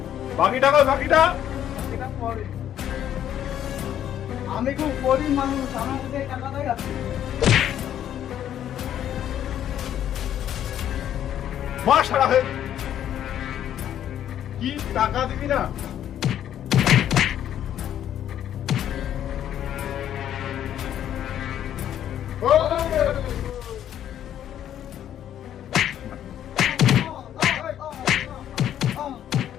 বাকি টাকা বাকিটা এটা পরে। আমি খুব গরিব মানুষ, আমার কাছে এই টাকাটাই আছে। মাস সারা হয়ে কি টাকা দিবি না?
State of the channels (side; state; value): right; quieter; 10.7 dB